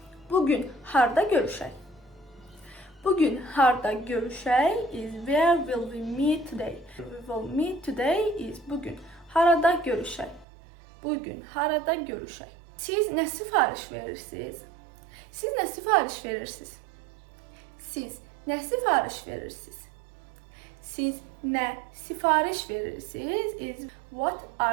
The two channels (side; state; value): left; drops out; at 10.5 s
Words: Bugün harda görüşək? Bugün harda görüşək is where will we meet today? We will meet today is bugün. Harada görüşək? Bugün harada görüşək? Siz nə sifariş verirsiniz? Siz nə sifariş verirsiniz? Siz nə sifariş verirsiniz? Siz nə sifariş verirsiniz is what